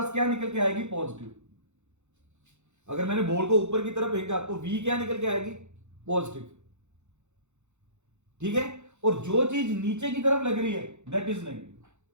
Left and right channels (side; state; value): left; late; 0.83 ms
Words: क्या निकल के आएगी, पॉजिटिव। अगर मैंने बॉल को ऊपर की तरफ फेंका तो वी क्या निकल के आएगी, पॉजिटिव, ठीक है। और जो चीज नीचे की तरफ लग रही है दैट इज नेगेटिव।